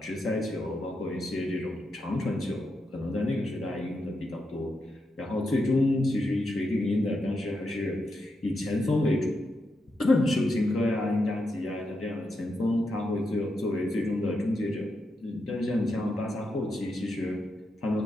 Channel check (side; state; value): both; normal; correlation 0.85